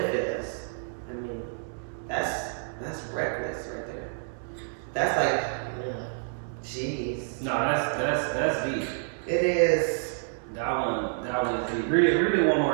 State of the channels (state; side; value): silent; left; digital silence